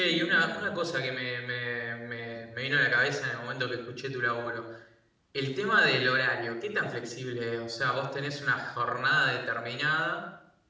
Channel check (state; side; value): identical; both; correlation 1.00